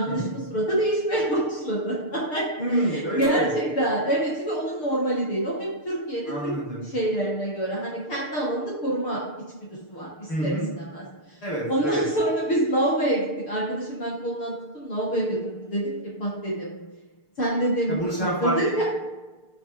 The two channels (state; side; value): late; right; 6.7 ms